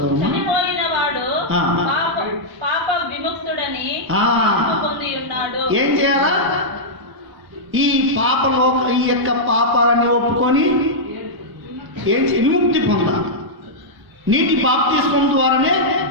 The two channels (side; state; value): left; late; 1.0 ms